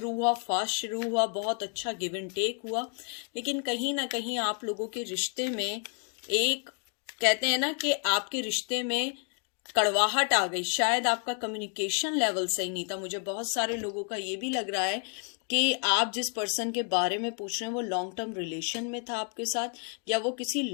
हुआ, फास्ट शुरू हुआ, बहुत अच्छा गिव एंड टेक हुआ, लेकिन कहीं ना कहीं आप लोगों के रिश्ते में एक, कहते हैं ना कि आपके रिश्ते में कड़वाहट आ गई. शायद आपका कम्युनिकेशन लेवल सही नहीं था. मुझे बहुत सारे लोगों का ये भी लग रहा है कि आप जिस पर्सन के बारे में पूछ रहे हैं वो लॉन्ग टर्म रिलेशन में था आपके साथ, या वो किसी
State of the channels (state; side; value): quieter; right; 39.4 dB